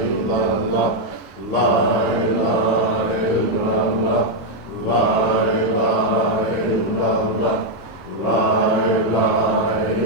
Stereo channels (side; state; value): both; normal; correlation 0.00